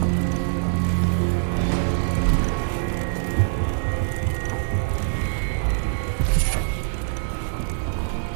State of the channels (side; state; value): left; silent; digital silence